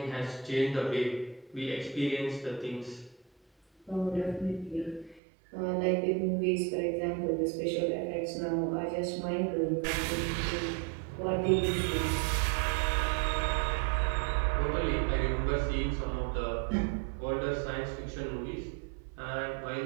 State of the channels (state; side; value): drops out; left; at 5.2 s